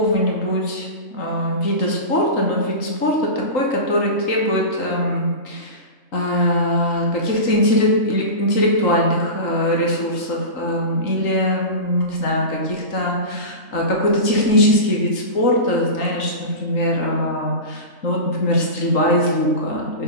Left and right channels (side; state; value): right; late; 3.8 ms